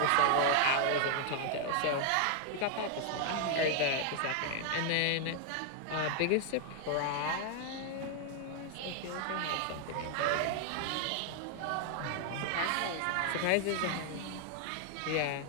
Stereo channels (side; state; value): both; different; correlation 0.00